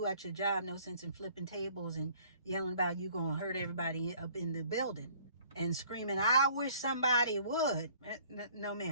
at your job, no sense in flipping tables and yelling about you going to hurt everybody up in the building and screaming, I wish somebody would. No,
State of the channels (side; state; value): both; inverted; correlation -0.56